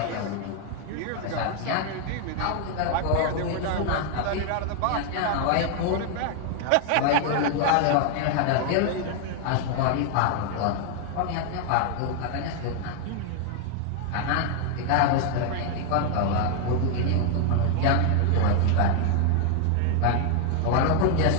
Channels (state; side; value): different; both; correlation 0.00